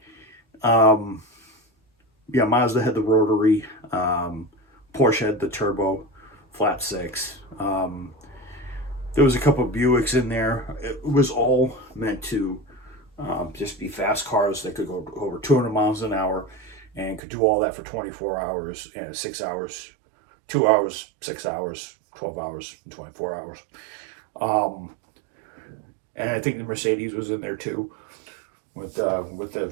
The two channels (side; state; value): left; drops out; at 17.2 s